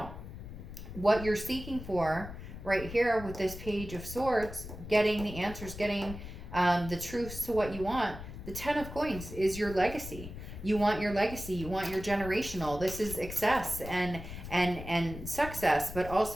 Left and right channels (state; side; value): noise; left; rumble, 11 dB below the sound